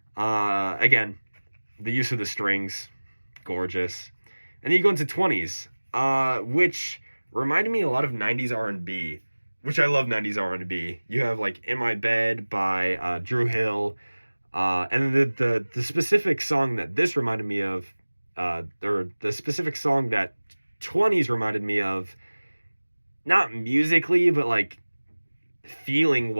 Again, the use of the strings, gorgeous. And then you go into 20s, which reminded me a lot of 90s R&B, which I love 90s R&B. You have like In My Bed by Drew Hill. And the specific song that this reminded me of, or the specific song that 20s reminded me of, not musically, but like feeling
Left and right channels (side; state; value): both; inverted; correlation -1.00